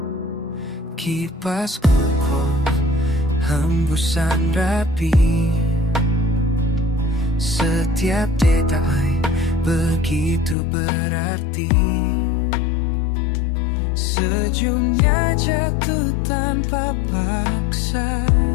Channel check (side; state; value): right; drops out; at 10.6 s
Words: Kipas kokoh, hembusan rapi. Setiap detai begitu berarti. Sejumnya jatuh tanpa paksa.